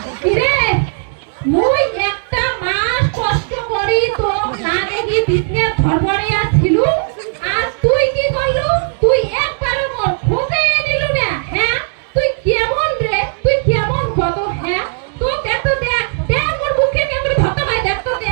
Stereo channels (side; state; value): left; silent; 69 dB below the other